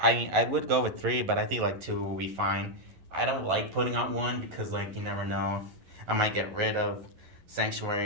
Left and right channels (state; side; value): late; left; 11 ms